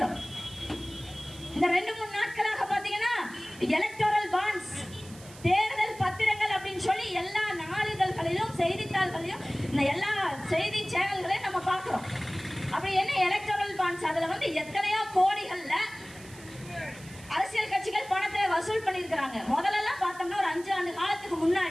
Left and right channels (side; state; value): right; noise; hiss, 20 dB below the sound